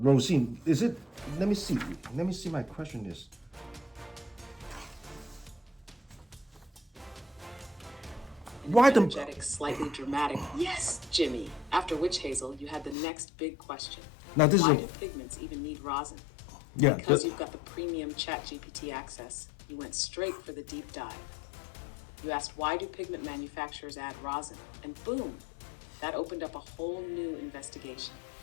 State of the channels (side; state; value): right; drops out; at 13.0 s